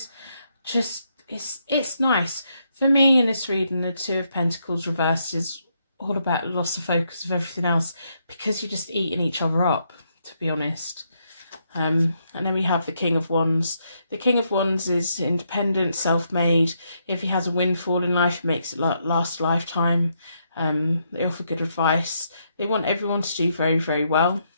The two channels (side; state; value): both; inverted; correlation -0.77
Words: Just it's nice for me in this reading. The Two of Pentacles reversed is all about loss of focus of everything else, because you're just eating each other up, to be honest. And then we have the King of Wands. The King of Wands is independent, self-made. If he has a windfall in life, he makes it last a lifetime. They offer good advice. They want everyone to do very, very well